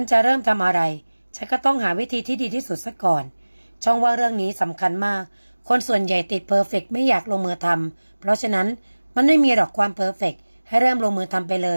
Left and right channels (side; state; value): both; inverted; correlation -1.00